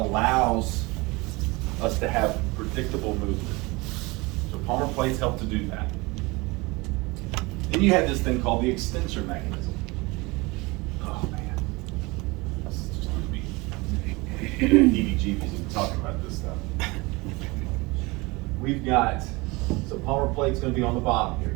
us to have predictable movement. So palmar plates help to do that. Then you have this thing called the extensor mechanism. Oh man, this is just going to be heebie-jeebies talking about this stuff. We've got, so palmar plate's going to be on the bottom here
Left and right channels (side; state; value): left; quieter; 24.3 dB